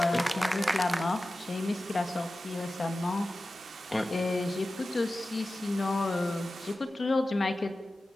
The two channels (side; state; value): both; normal; correlation 0.95